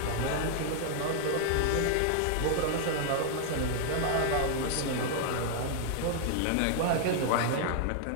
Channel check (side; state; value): both; different; correlation 0.00